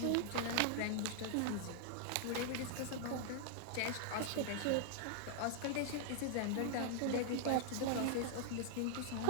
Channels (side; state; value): both; different; correlation -0.01